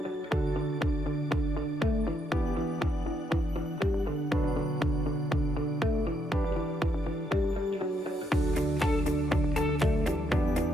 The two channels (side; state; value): both; normal; correlation 0.77